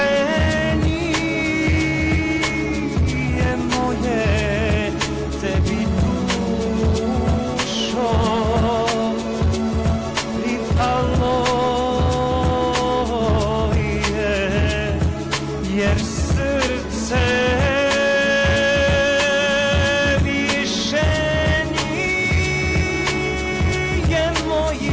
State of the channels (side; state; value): both; identical; correlation 1.00